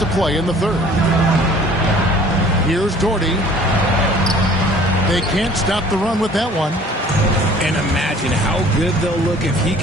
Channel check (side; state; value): both; normal; correlation 0.51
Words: to play in the third. Here's Doherty. They can't stop the run with that one. And imagine how good they'll look if he